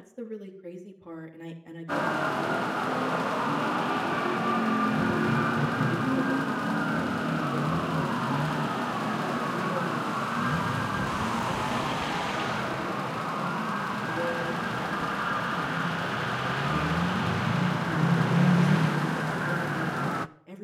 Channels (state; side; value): identical; both; correlation 1.00